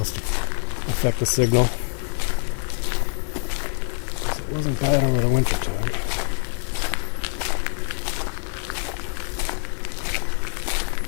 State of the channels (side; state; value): right; silent; 62 dB below the other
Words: have affect the signal. Because it wasn't bad over the winter time.